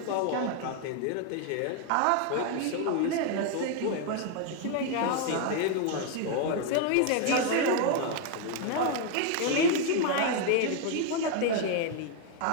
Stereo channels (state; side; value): different; both; correlation 0.00